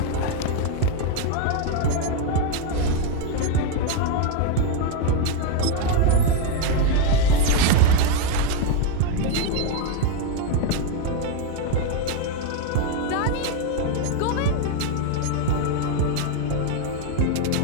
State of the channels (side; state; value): both; different; correlation 0.02